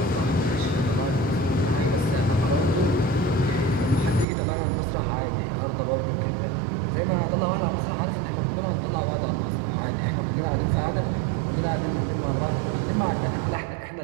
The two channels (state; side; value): drops out; left; at 4.2 s